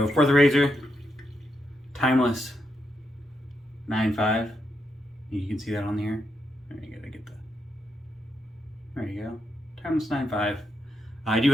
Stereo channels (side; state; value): both; normal; correlation 0.82